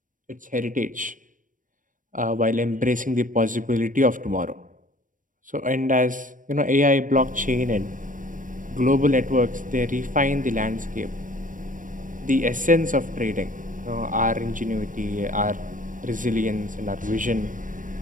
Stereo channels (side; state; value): left; late; 0.38 ms